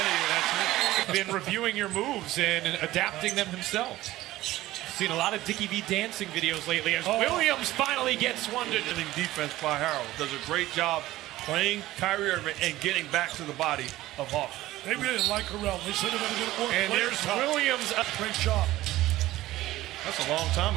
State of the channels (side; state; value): left; quieter; 16.3 dB